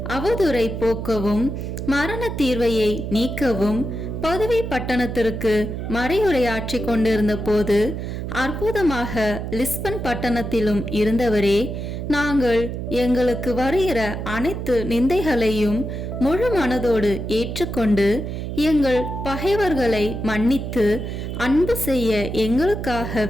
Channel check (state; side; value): noise; right; hum, 5 dB below the sound